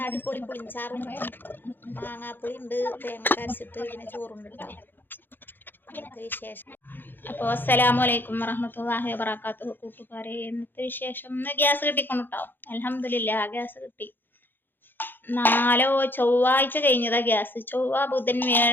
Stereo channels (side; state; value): right; late; 0.096 ms